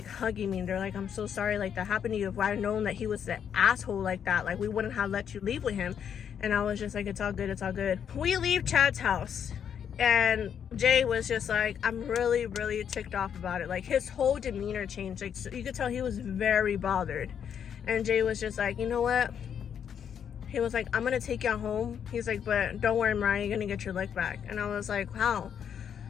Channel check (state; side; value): quieter; right; 8.2 dB